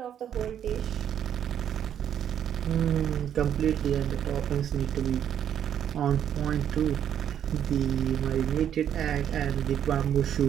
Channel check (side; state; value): left; quieter; 9.6 dB